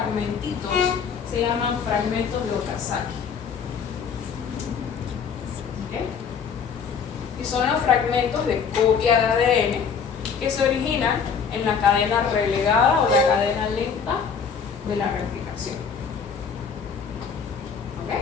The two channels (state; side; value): quieter; right; 6.4 dB